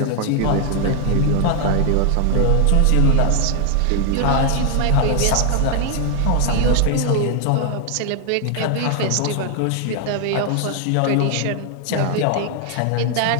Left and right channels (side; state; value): both; different; correlation 0.00